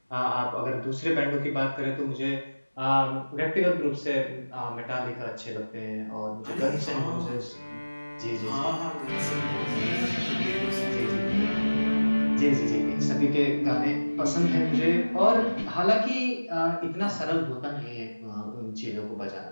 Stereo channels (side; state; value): both; inverted; correlation -1.00